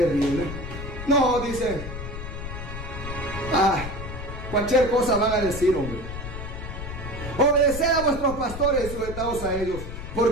No, dice. Cualquier cosa van a decir, hombre. Obedeced a vuestros pastores y sujetaos a ellos,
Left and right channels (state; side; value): noise; left; rumble, 8 dB below the sound